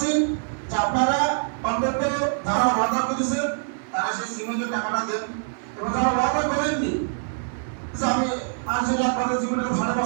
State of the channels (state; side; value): silent; left; digital silence